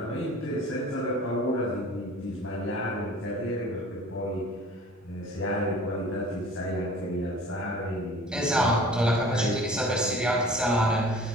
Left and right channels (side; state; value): both; normal; correlation 0.46